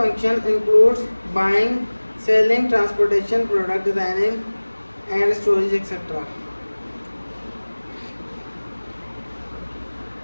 includes buying, selling, transportation, product designing, and storage, etc.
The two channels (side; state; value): both; inverted; correlation -1.00